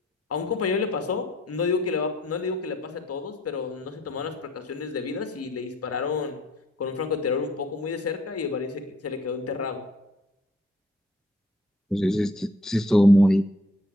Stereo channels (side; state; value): both; normal; correlation 0.62